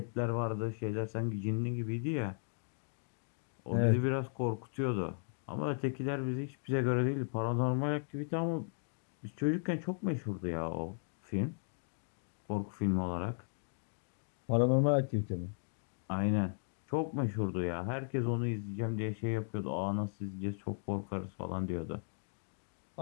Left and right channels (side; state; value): right; silent; digital silence